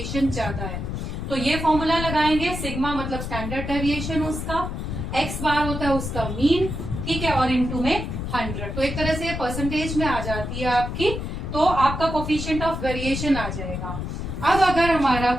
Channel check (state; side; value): noise; left; rumble, 5 dB below the sound